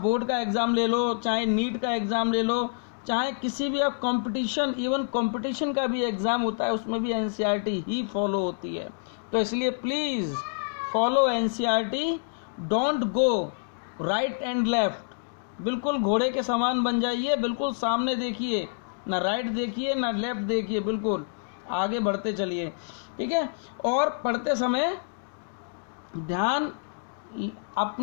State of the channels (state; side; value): silent; right; digital silence